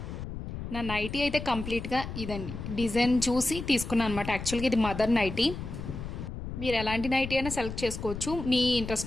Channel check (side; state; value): left; noise; rumble, 8 dB below the sound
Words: నా నైటీ అయితే కంప్లీట్గా ఇదండి, డిజైన్ చూసి తీసుకున్నాను అనమాట. యాక్చువల్గా ఇది మదర్ నైటీ. మీరు ఎలాంటి నైటీ అయినా సెలెక్ట్ చేసుకోవచ్చు మీ